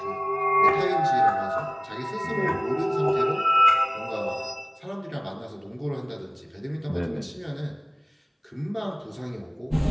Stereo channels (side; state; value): both; identical; correlation 1.00